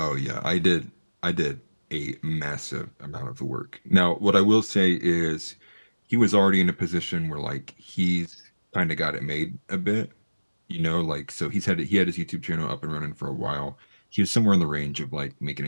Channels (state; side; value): inverted; both; correlation -1.00